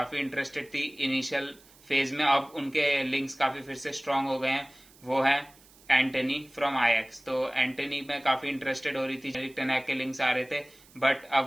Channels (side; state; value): right; noise; hiss, 26 dB below the sound